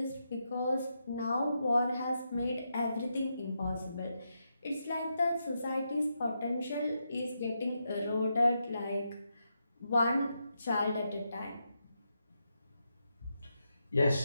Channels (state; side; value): inverted; both; correlation -0.84